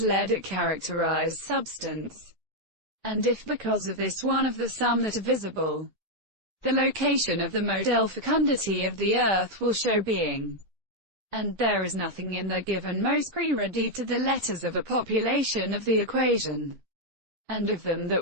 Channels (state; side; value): normal; both; correlation 0.00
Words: led at characterized substance. And if because of this one of the sum that are visible, the location of the modal fecundity of the earth will show being. And there is nothing in the given most pre-ready to the letters of a population of the equation, and of them